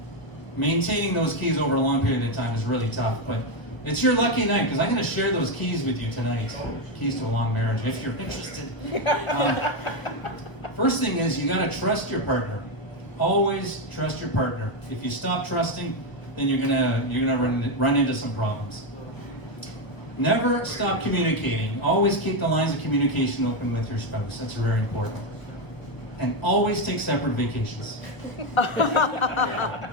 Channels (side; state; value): right; late; 1.2 ms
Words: maintaining those keys over a long period of time is really tough. But it's your lucky night, because I'm gonna share those keys with you tonight. Keys to a long marriage, if you're interested. First thing is, you gotta trust your partner. Always trust your partner. If you stop trusting, then you're gonna run into some problems. Never stop communicating. Always keep the lines of communication open with your spouse. That's very important. And always take separate vacations.